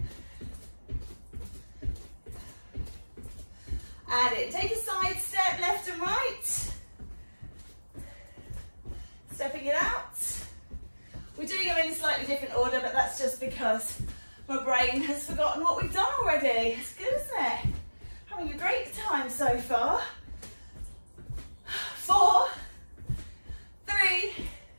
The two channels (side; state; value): both; inverted; correlation -1.00